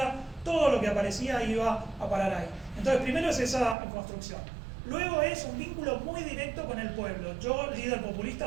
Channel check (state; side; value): drops out; left; at 3.8 s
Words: todo lo que aparecía iba a parar ahí. Entonces, primero es esa construcción. Luego es un vínculo muy directo con el pueblo. Yo, líder